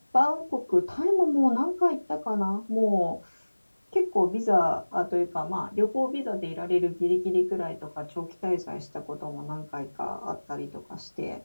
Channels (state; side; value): inverted; both; correlation -1.00